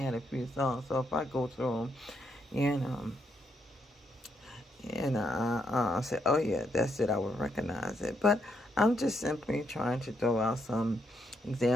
a few songs. So if I go through them, I say, oh yeah, that's it, I would recognize it. But I'm just simply trying to throw out some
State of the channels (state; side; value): normal; both; correlation 0.77